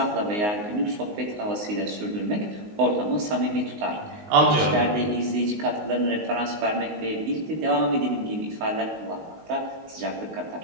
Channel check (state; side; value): late; left; 19 ms